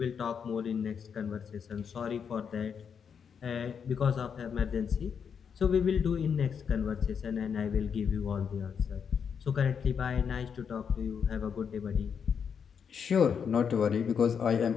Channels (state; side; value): quieter; right; 6.9 dB